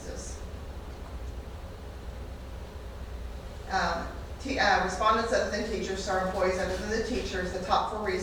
Respondents other than teachers, so our employees other than the teachers, the top 4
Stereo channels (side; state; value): both; identical; correlation 1.00